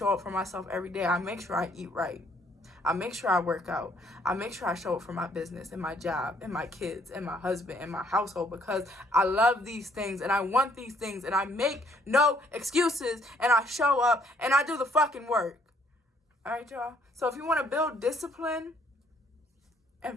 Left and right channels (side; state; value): both; normal; correlation 0.66